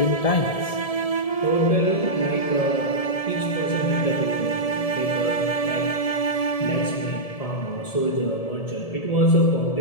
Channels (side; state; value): right; late; 1.7 ms